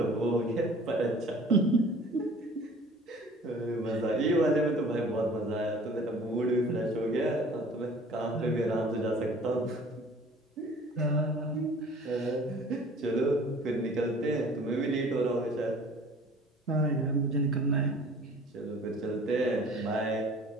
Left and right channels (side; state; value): both; normal; correlation 0.49